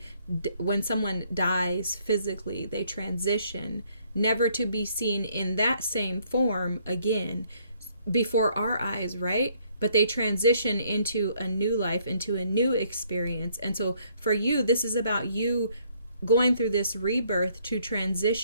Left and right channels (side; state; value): both; inverted; correlation -0.66